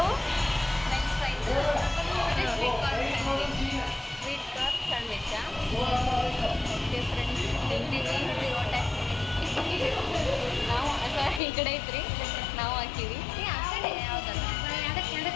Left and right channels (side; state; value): right; drops out; at 11.4 s